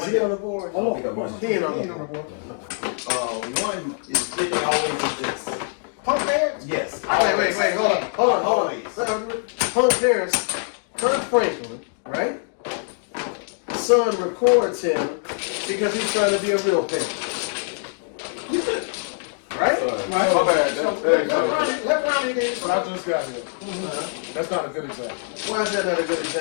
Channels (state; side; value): silent; right; 63 dB below the other